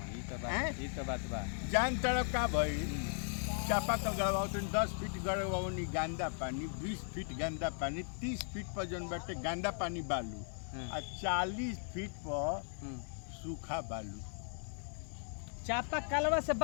ई तो बात बा। जान तरफ का भाई चापा कल गड़वाओ तो 10 फीट गड़वाओनी गंदा पानी, 20 फीट गंदा पानी, 30 फीट पर जन बाटे गंदा पानी बालू और 40 फीट पर सूखा बालू। चापा कलवा से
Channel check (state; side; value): silent; right; 53 dB below the other